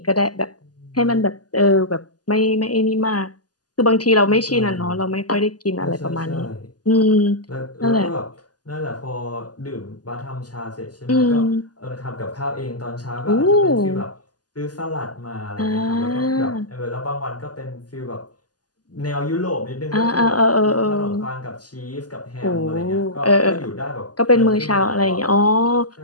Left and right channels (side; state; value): right; late; 0.69 ms